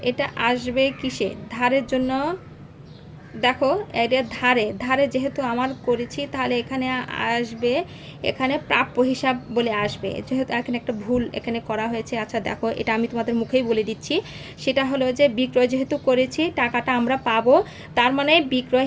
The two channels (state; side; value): identical; both; correlation 1.00